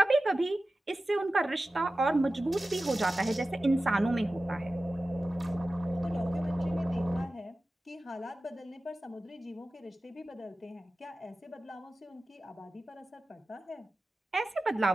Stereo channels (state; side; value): normal; both; correlation 0.95